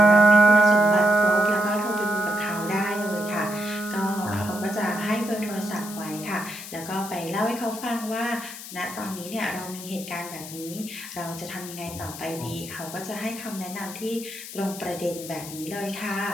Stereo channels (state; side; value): noise; left; hiss, 12 dB below the sound